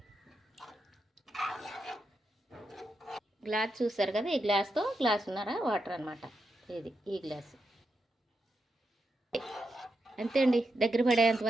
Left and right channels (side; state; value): both; normal; correlation 0.85